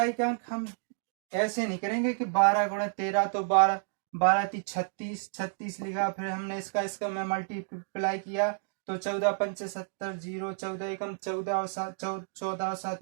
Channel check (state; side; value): silent; left; digital silence